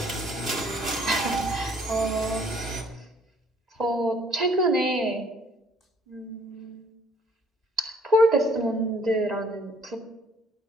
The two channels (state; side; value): normal; both; correlation 0.60